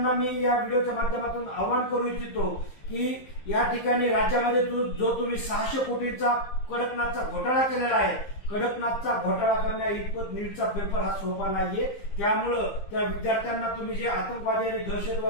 मी या व्हिडिओच्या माध्यमातून आवाहन करू इच्छितो की या ठिकाणी राज्यामध्ये जो तुम्ही 600 कोटींचा कडकनाथचा घोटाळा केलेला आहे, कडकनाथचा घोटाळा करण्या इतपत नीटचा पेपर हा सोपा नाहीये. त्यामुळं त्या विद्यार्थ्यांना तुम्ही जे आतंकवादी आणि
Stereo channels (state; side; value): late; right; 15 ms